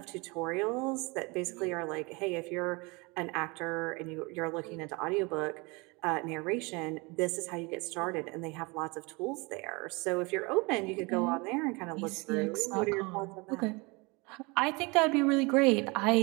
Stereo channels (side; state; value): left; quieter; 27.3 dB